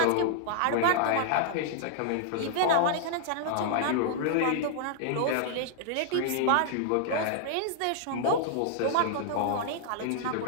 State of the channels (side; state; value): both; different; correlation -0.01